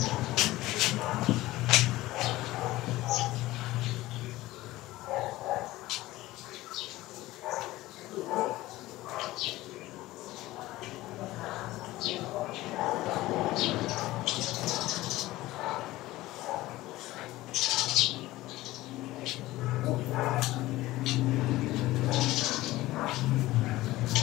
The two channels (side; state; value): right; quieter; 17.5 dB